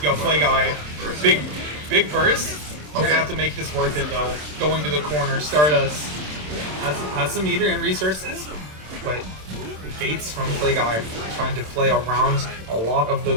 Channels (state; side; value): late; left; 27 ms